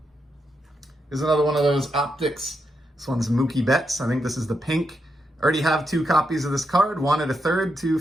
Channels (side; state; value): both; normal; correlation 0.83